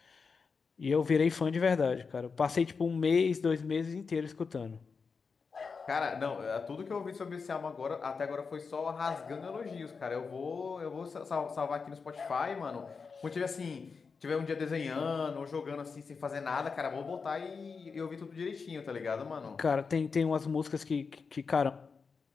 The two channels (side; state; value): right; quieter; 5.1 dB